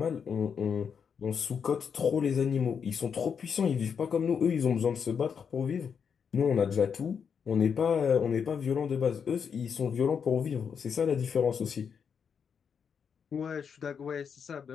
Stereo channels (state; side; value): quieter; right; 6.8 dB